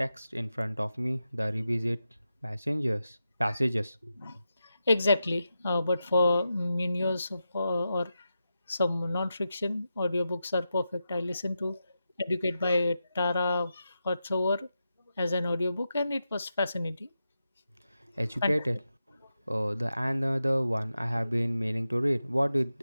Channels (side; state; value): both; inverted; correlation -0.89